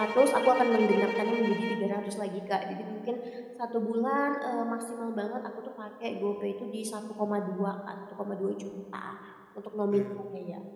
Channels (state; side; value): identical; both; correlation 1.00